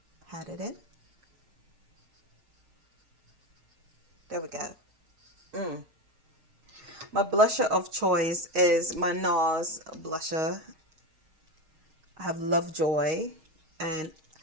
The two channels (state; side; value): late; left; 6.4 ms